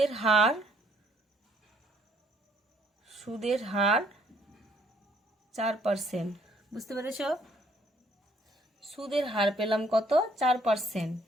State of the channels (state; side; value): normal; both; correlation 0.64